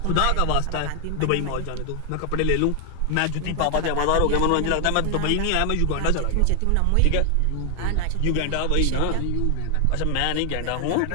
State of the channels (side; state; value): both; different; correlation 0.00